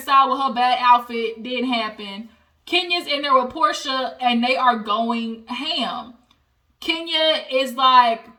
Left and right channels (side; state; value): both; identical; correlation 1.00